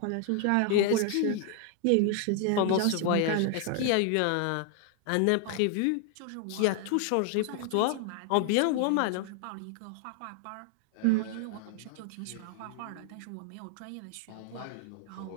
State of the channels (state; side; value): different; both; correlation 0.00